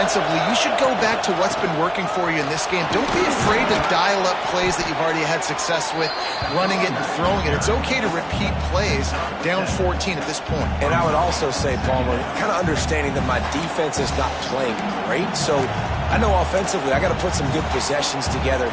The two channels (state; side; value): identical; both; correlation 1.00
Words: you should go back to what's been working for you in this game. Don't be afraid to dial up plays that you've already had success with, running it and throwing it. It's okay to repeat plays down 14 at this point. And I would also say, Palmer, kind of understanding that my defense is not playing great, so I know offensively I got to put some good possessions together